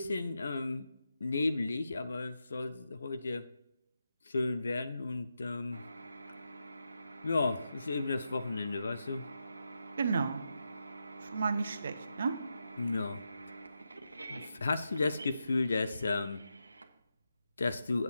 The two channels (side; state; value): both; inverted; correlation -0.87